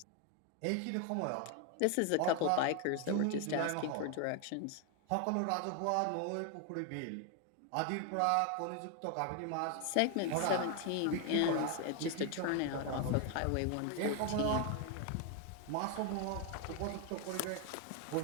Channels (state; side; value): different; both; correlation 0.01